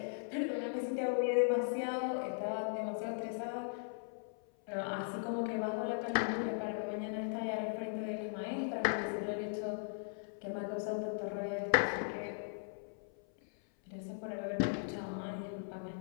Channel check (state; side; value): silent; right; 52 dB below the other